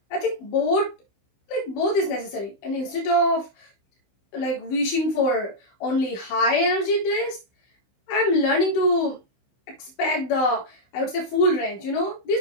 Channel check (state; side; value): late; right; 15 ms